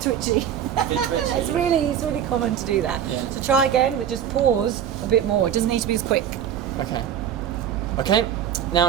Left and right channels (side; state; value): left; quieter; 9.4 dB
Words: twitchy. It's really common to do that. Yeah. So try again, but just pause a bit more. It doesn't need to be as quick. Okay. Okay,